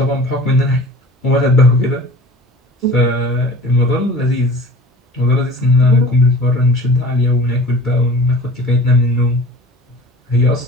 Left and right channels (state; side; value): normal; both; correlation 0.42